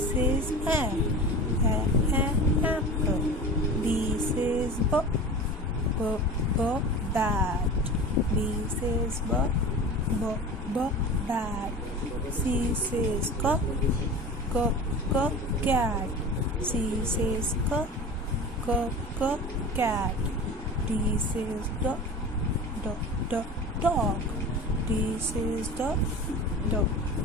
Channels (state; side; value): normal; both; correlation 0.34